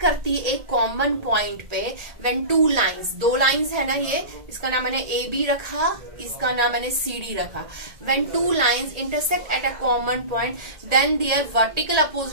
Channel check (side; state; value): left; late; 1.8 ms